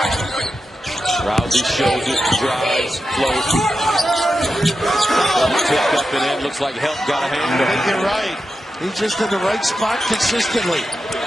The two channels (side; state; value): both; normal; correlation 0.90